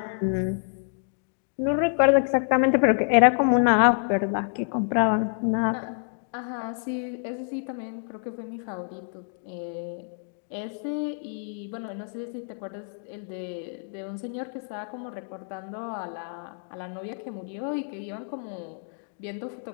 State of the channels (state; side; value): silent; right; 60 dB below the other